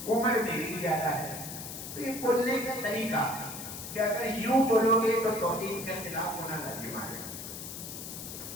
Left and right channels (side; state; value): left; noise; hiss, 9 dB below the sound